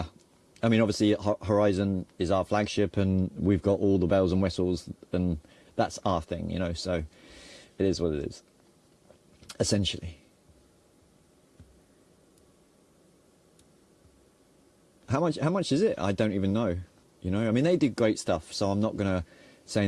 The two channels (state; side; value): identical; both; correlation 1.00